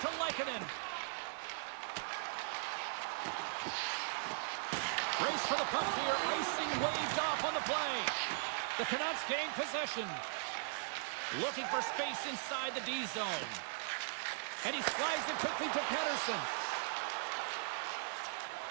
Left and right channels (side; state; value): left; silent; 52 dB below the other